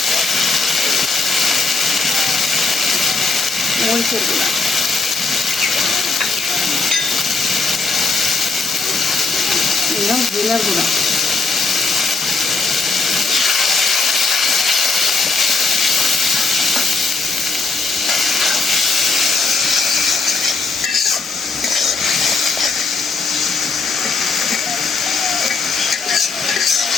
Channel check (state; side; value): quieter; right; 4.0 dB